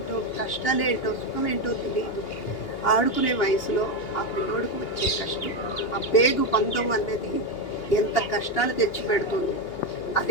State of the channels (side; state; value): right; late; 2.8 ms